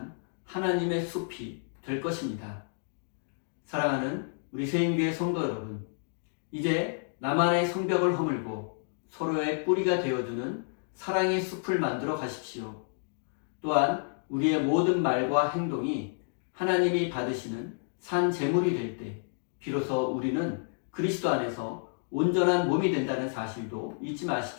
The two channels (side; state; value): right; silent; digital silence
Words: 하나님의 숲이 될 것입니다. 사랑하는 우리 세임교회 성도 여러분, 이제 나만의 성벽을 허물고 서로의 뿌리가 되어주는 사랑의 숲을 만들어 가십시오. 또한 우리의 모든 말과 행동이 하나님이 받으시는 산 제물이 될 때 비로소 우리는 그리스도 안에서 온전한 몸이 된다는 사실도 잊지